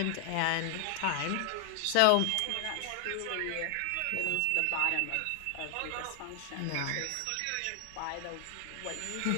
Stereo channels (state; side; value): different; both; correlation 0.00